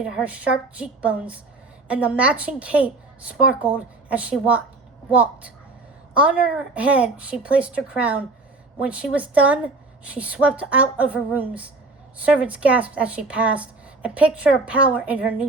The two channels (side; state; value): left; quieter; 3.3 dB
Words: her sharp cheekbones, and the matching cape sparkled as she walked. On her head, she placed her crown. When she was done, she swept out of her rooms. Servants gasped as she passed, a picture of power in her